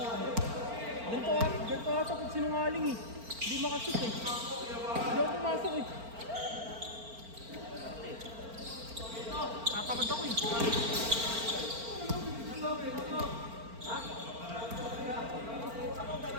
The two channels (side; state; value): left; late; 4.4 ms